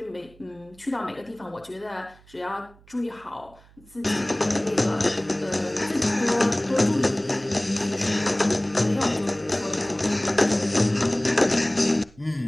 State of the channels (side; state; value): right; noise; hum, 26 dB below the sound